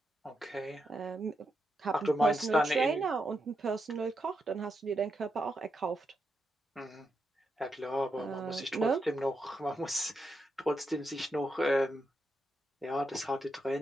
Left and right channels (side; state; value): both; normal; correlation 0.84